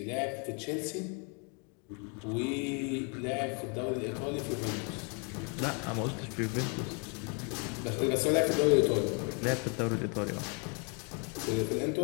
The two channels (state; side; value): quieter; right; 36.6 dB